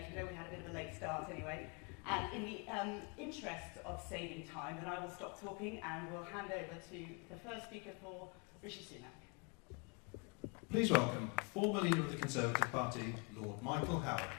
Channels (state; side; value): quieter; right; 33.2 dB